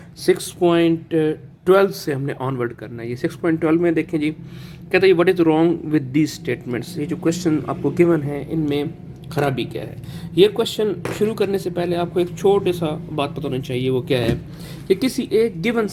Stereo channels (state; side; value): identical; both; correlation 1.00